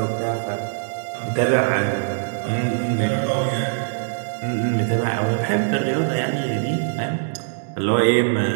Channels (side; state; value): left; silent; digital silence